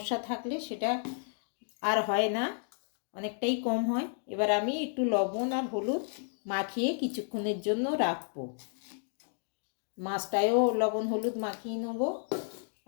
থাকলে সেটা আর হয় না, অনেকটাই কম হয়। এবার আমি একটু লবণ আর হলুদ মাখিয়ে কিছুক্ষণের জন্য রাখবো। মাছটায়ও লবণ হলুদ মাখিয়ে নেব,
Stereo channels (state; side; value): silent; right; digital silence